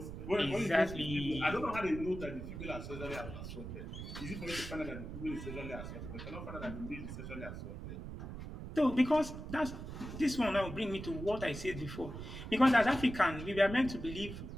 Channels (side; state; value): right; noise; rumble, 9 dB below the sound